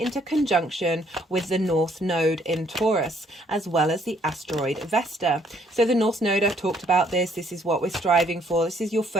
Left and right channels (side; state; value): both; normal; correlation 0.66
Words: conjunction with the North Node in Taurus, as well as the asteroid Vesta. So the North Node, I've talked about this. This is what we're striving for. This is your